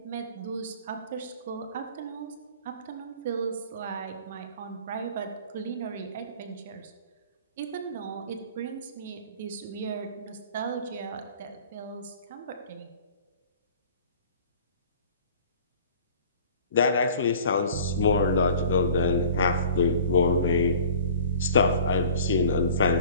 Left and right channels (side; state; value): both; inverted; correlation -0.46